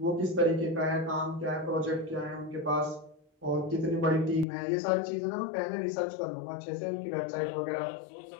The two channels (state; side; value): drops out; right; at 4.5 s